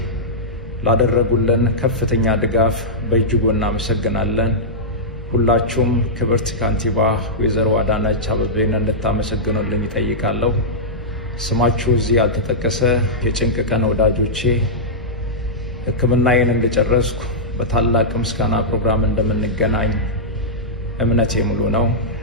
ላደረጉልን ከፍተኛ ድጋፍ በእጅጉ እናመሰግናለን። ሁላችሁም ክብርት ካንቲባ ወይዘሮ አዳነች አቤቤን እንድታመሰግኑልኝ ይጠይቃለሁ። ስማችሁ እዚህ ያልተጠቀሰ የጭንቅ ቀን ወዳጆቼ ሕክምናዬን እንደጨረስኩ በታላቅ ምስጋና ፕሮግራም እንደምንገናኝ እምነቴ ሙሉ ነው።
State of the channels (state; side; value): normal; both; correlation -0.11